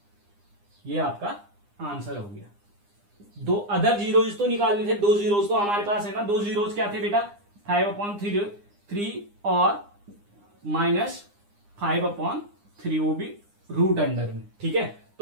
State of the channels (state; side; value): late; left; 9.8 ms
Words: ये आपका आंसर हो गया। दो अदर जीरोज तो निकालने थे, दो जीरोज तो हमारे पास है ना। दो जीरोज क्या थे बेटा, 5/3 और -5/3, वो भी रूट अंडर में। ठीक है,